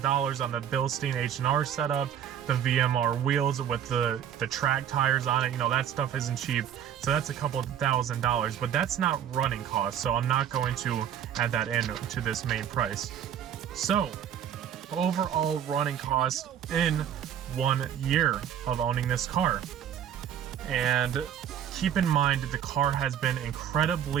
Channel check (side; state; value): left; quieter; 9.5 dB